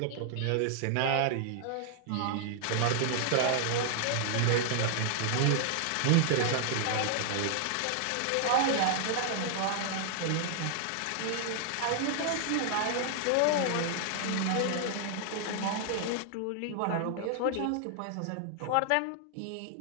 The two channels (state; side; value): different; both; correlation 0.00